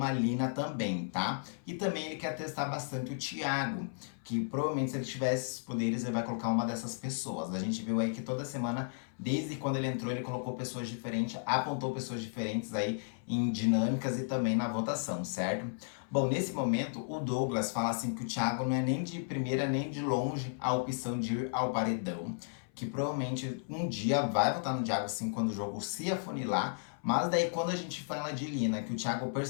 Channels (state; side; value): silent; right; 55 dB below the other